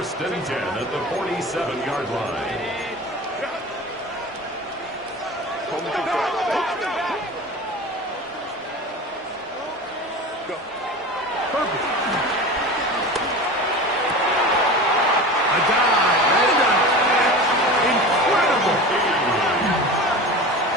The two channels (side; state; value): both; normal; correlation 0.33